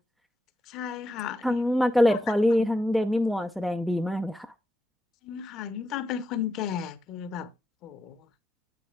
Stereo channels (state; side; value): normal; both; correlation 0.86